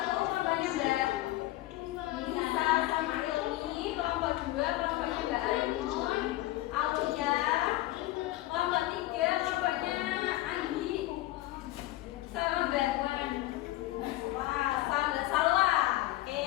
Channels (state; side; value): quieter; right; 16.9 dB